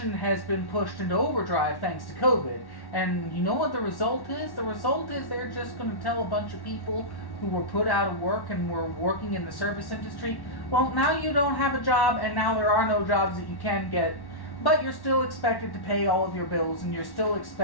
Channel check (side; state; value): right; late; 1.1 ms